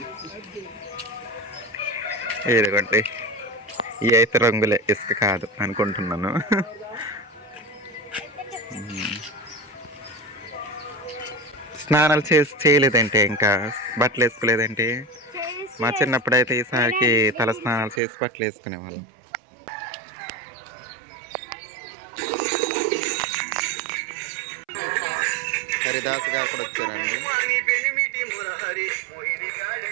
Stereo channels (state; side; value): drops out; left; at 18.0 s